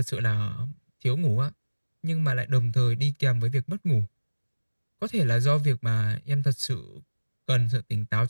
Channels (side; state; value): both; inverted; correlation -1.00